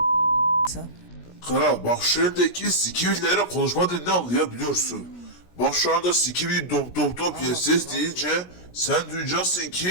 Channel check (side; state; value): right; late; 17 ms